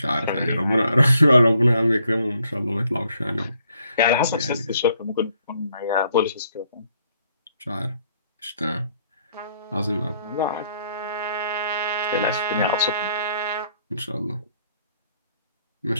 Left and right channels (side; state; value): both; inverted; correlation -0.68